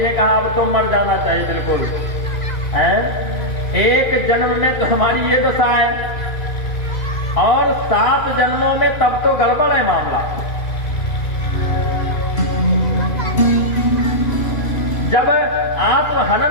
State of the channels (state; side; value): late; right; 2.5 ms